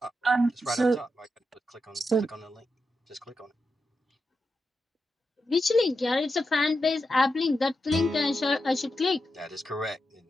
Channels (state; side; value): normal; both; correlation 0.88